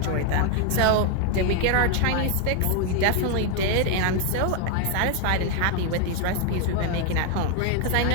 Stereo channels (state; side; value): different; both; correlation 0.01